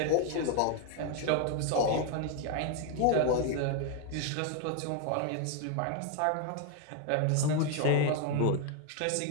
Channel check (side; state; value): both; different; correlation 0.01